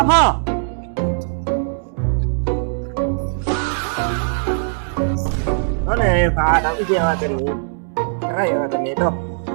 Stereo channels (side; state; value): left; silent; digital silence